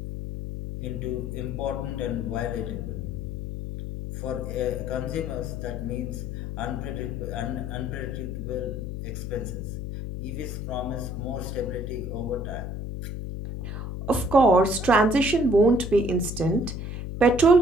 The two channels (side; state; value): left; noise; hum, 5 dB below the sound